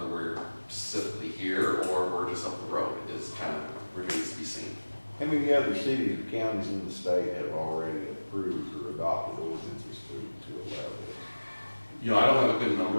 we're specifically here or we're just up the road is kind of remains to be seen. How many other cities and counties in the state have already approved or adopted ordinances to allow this? You know, I don't have a good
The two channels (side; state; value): both; inverted; correlation -1.00